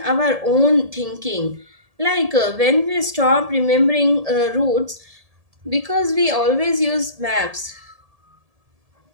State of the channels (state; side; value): late; left; 1.7 ms